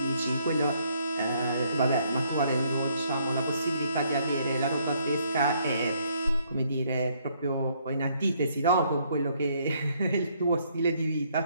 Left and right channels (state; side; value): inverted; both; correlation -0.68